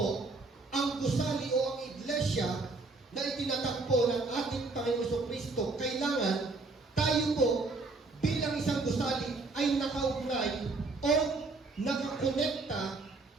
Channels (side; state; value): left; quieter; 3.6 dB